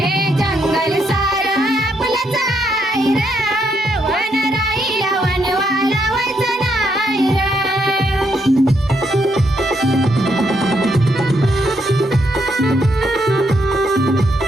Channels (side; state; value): both; normal; correlation 0.76